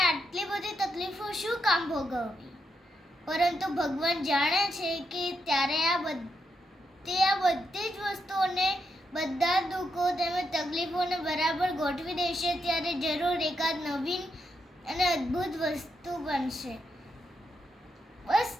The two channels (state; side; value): normal; both; correlation 0.81